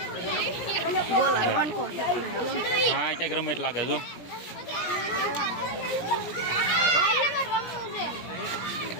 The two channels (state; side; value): late; right; 17 ms